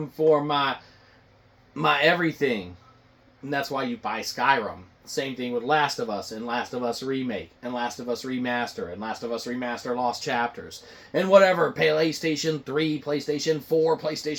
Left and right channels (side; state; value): both; identical; correlation 1.00